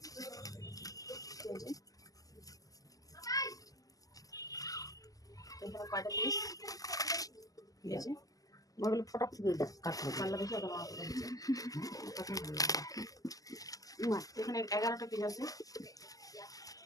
এখানে কয়টা পিস দিয়েছে, ওগুলো ফটাক কাটতে পাল্লা দেখে ওটা মাথা দিচ্ছে। এখানে 11টা পিস আছে।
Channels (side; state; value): right; late; 0.17 ms